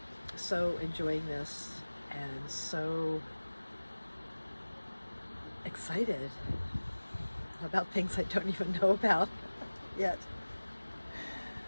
so enjoying this and so excited about things I don't even know about yet.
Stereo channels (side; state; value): both; inverted; correlation -1.00